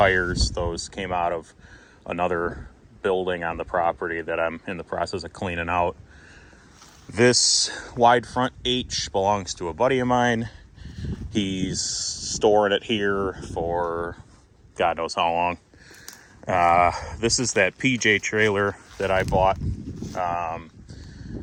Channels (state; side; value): identical; both; correlation 1.00